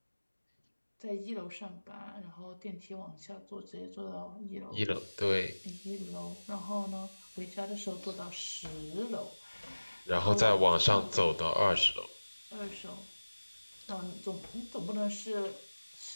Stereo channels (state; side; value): inverted; both; correlation -1.00